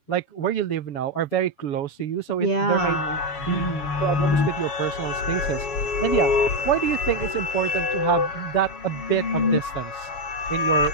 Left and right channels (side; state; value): right; late; 7.1 ms